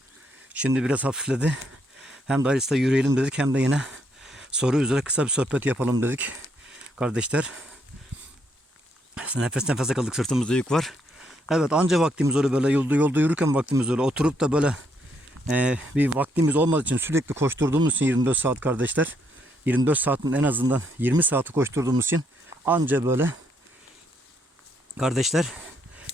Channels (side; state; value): both; normal; correlation 0.74